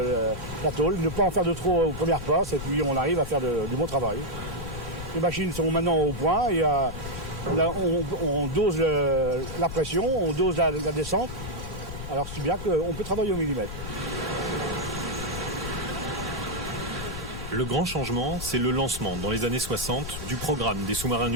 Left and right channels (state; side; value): noise; left; rumble, 9 dB below the sound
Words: la tôle, ne pas en faire de trop aux premières passes, et puis on arrive à faire du bon travail. Les machines sont maintenant au point, et on dose la pression, on dose la descente, alors c'est bien qu'on peut travailler au millimètre. Le grand changement, c'est le lancement, dans les années 60, du programme des sous-marins